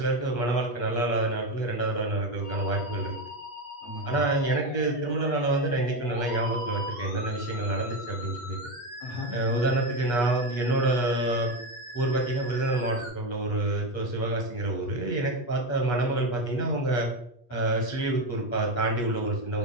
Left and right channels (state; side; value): late; right; 8.3 ms